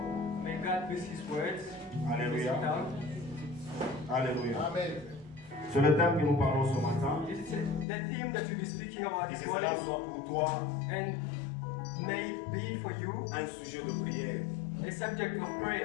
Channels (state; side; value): drops out; right; at 7.9 s